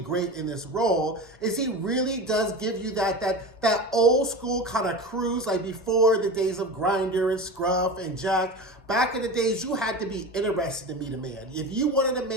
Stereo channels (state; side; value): normal; both; correlation 0.28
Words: in this role is he really does give you that old school kind of cruise, like before the days of Grindr and Scruff and Jack. Back in the days, you had to be interested to meet a man. If you wanted a